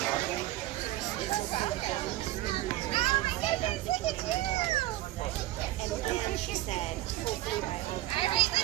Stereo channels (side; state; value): left; quieter; 16.2 dB